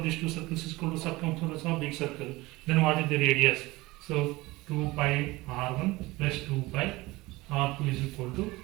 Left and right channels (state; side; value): quieter; left; 20.8 dB